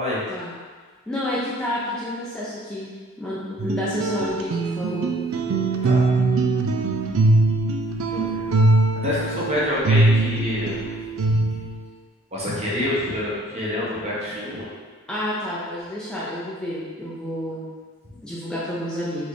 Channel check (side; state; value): both; normal; correlation 0.59